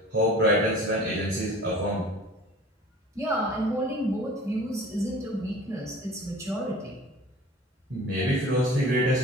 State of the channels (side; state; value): both; normal; correlation 0.44